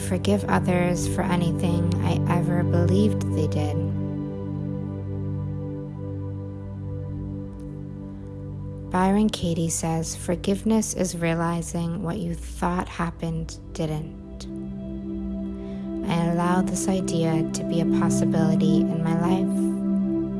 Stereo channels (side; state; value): both; identical; correlation 1.00